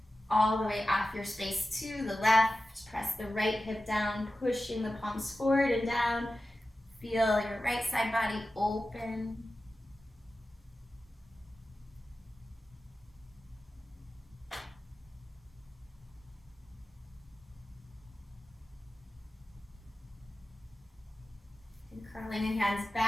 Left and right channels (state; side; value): normal; both; correlation 0.94